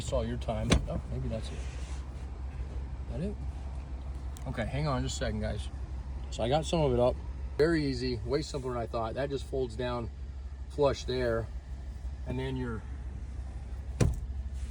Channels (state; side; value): identical; both; correlation 1.00